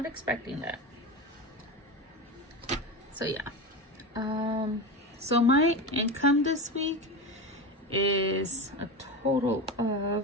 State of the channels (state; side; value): normal; both; correlation 0.23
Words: expecting that. So yeah. So my income this week is a total